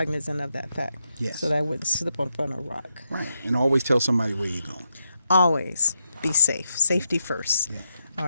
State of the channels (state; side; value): inverted; both; correlation -0.83